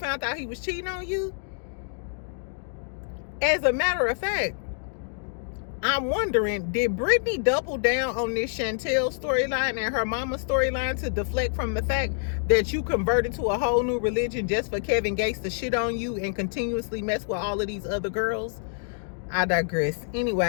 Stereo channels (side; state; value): right; silent; digital silence